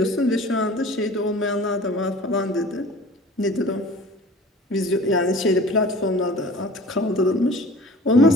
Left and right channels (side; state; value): both; normal; correlation 0.44